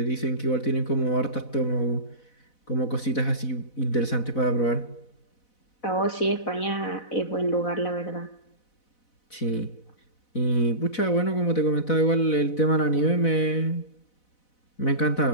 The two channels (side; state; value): right; late; 4.0 ms